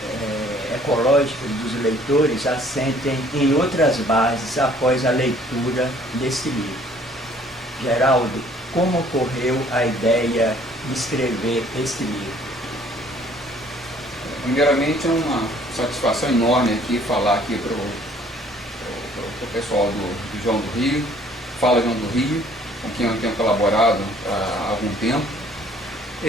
ecológicas dos leitores assentem em outras bases após a leitura desse livro. Geraldo, como ocorreu a ideia de escrever este livro? Primeiramente, é uma satisfação enorme aqui falar aqui para o pessoal do João do Rio, Fala João do Rio, com quem eu tenho colaborado há algum tempo.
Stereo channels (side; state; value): both; normal; correlation 0.57